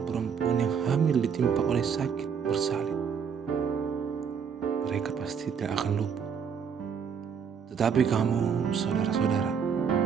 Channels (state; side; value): quieter; left; 6.9 dB